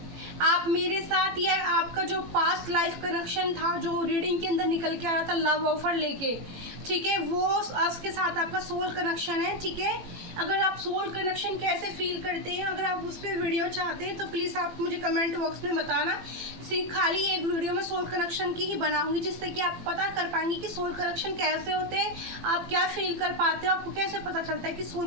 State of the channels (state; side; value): late; left; 18 ms